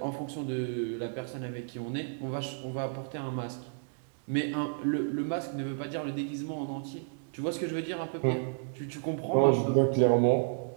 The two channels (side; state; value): left; silent; digital silence